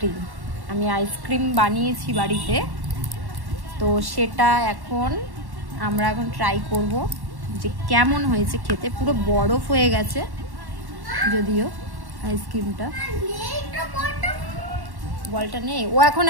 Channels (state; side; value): late; left; 1.1 ms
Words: আমি আইসক্রিম বানিয়েছি বাড়িতে, তো সেটা আমরা এখন ট্রাই করব যে কেমন হয়েছে খেতে। পুরো বরফ হয়ে গেছে যদিও আইসক্রিমটা। বলটা নেই, ও এখন